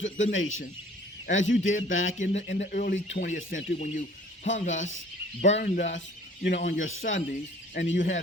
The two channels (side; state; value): both; normal; correlation 0.51